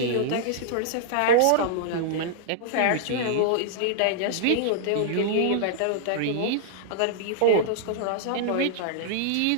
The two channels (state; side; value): different; both; correlation -0.01